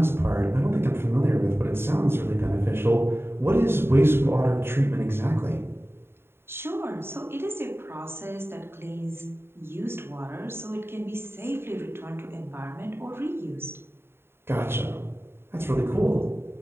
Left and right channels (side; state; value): left; late; 0.11 ms